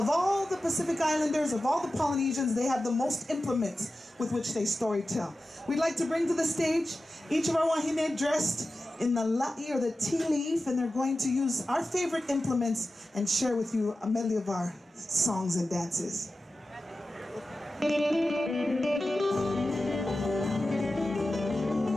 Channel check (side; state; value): both; normal; correlation 0.94